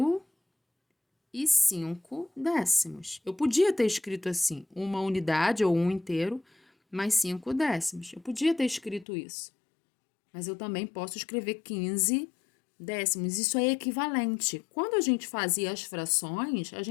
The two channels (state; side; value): drops out; right; at 9.1 s